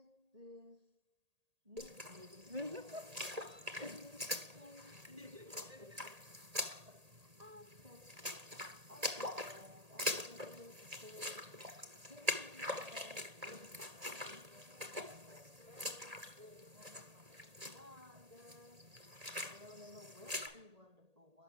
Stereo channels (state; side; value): late; left; 1.8 ms